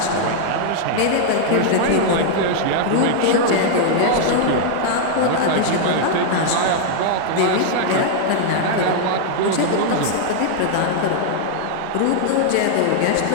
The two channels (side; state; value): both; different; correlation 0.00